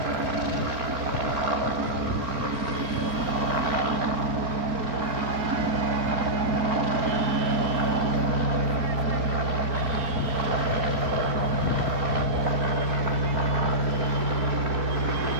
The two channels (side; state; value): left; late; 4.4 ms